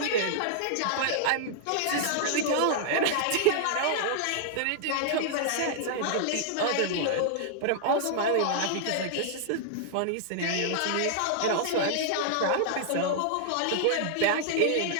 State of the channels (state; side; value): different; both; correlation -0.01